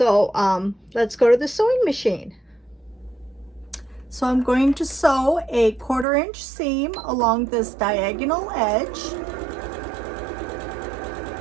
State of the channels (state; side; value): drops out; left; at 6.1 s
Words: let's go to the sewing machine. So I'm going to sew a 1/4 inch seam along this diagonal edge,